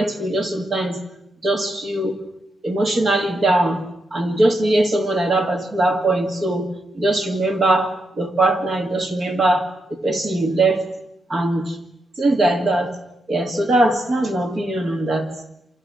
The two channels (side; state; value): both; normal; correlation 0.83